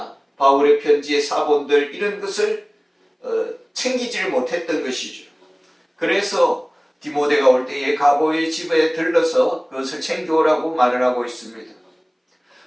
바울의 편지의 사본들 이런 것을 챙기지를 못했던 것이죠. 그래서 디모데가 올 때에 가보의 집에 들러서 그것을 챙겨오라고 말을 하고 있습니다.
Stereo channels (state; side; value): identical; both; correlation 1.00